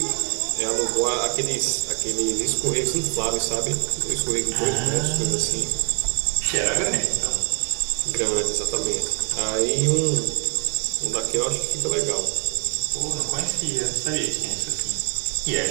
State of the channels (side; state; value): left; quieter; 34.1 dB